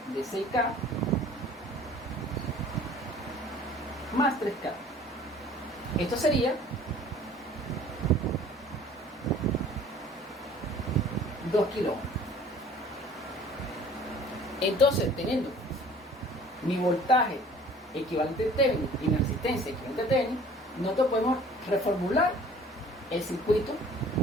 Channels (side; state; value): both; normal; correlation 0.50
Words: de 6K más 3K. Esto sería 2 kilo ohm. Entonces, teniendo mi voltaje equivalente a Thevenin y mi resistencia equivalente a Thevenin, nosotros podemos reformular el circuito